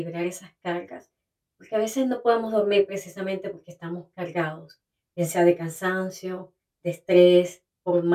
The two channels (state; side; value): identical; both; correlation 1.00